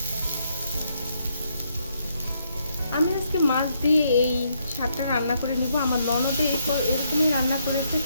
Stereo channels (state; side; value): inverted; both; correlation -0.75